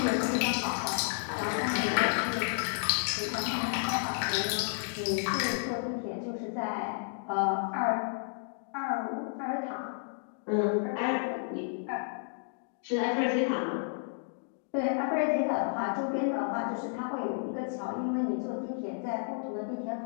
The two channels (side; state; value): right; silent; digital silence